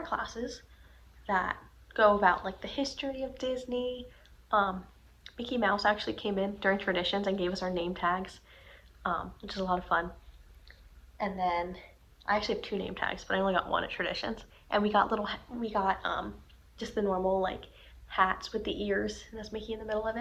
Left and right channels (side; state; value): both; identical; correlation 1.00